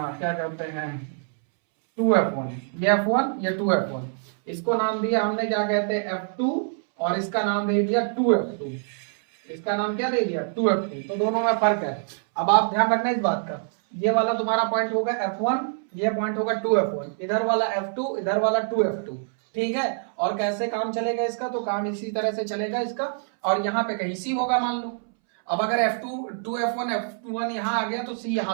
कहते हैं 2F1। ये F1, ये 2F1। इसको नाम दिया हमने, क्या कहते हैं? F2। और इसका नाम दे दिया 2F2। इसका नाम क्या दे दिया? 2F2। तो दोनों में फर्क है। अब आप ध्यान रखना इस बात का, ये वाला तुम्हारा पॉइंट होगा F1, ये पॉइंट होगा 2F1। इधर वाला F2, इधर वाला 2F2। ठीक है, और कैसे काम चलेगा इसका? तो काम इसी तरह से चलेगा इसका। और यहाँ पे कहीं सी होगा मान लो। अब अगर F2, 2F1, F1 यहाँ आ गया तो C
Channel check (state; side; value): silent; left; 62 dB below the other